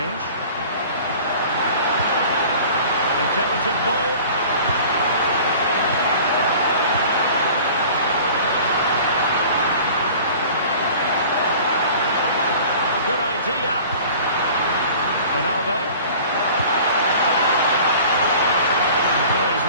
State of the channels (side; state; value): both; inverted; correlation -0.44